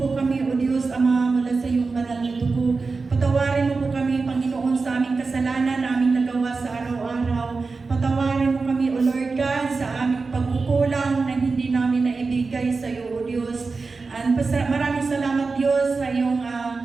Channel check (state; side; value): quieter; left; 4.2 dB